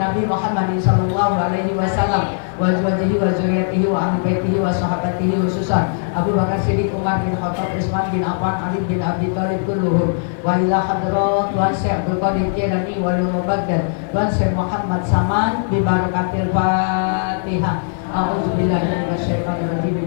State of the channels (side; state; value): right; silent; 55 dB below the other